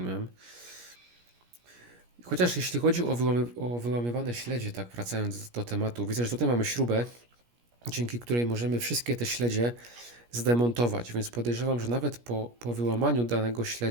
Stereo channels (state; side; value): late; left; 17 ms